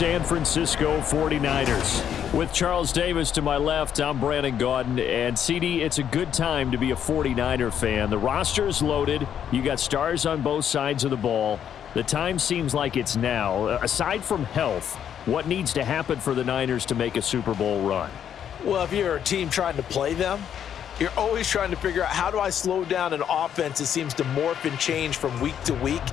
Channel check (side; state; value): right; quieter; 9.1 dB